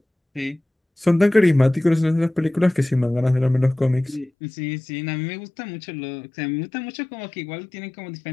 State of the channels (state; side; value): drops out; right; at 4.3 s